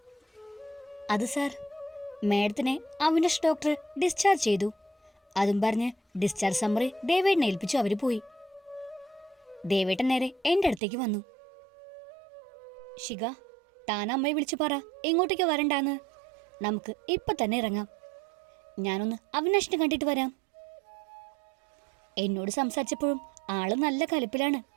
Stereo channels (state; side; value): drops out; left; at 10.8 s